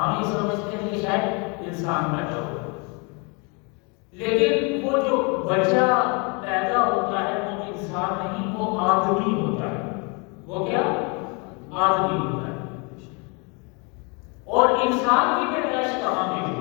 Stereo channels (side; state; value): right; quieter; 32.2 dB